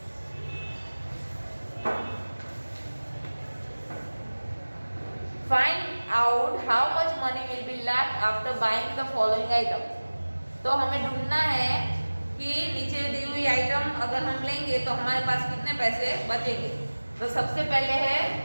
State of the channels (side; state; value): both; inverted; correlation -1.00